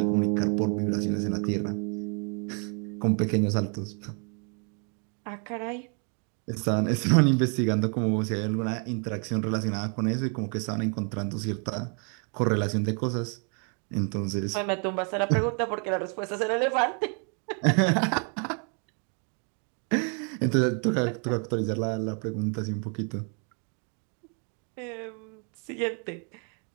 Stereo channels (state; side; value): quieter; left; 39.8 dB